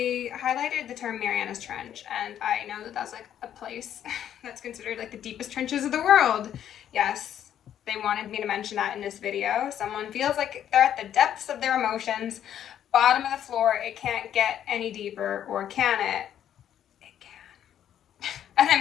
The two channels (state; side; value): quieter; right; 10.2 dB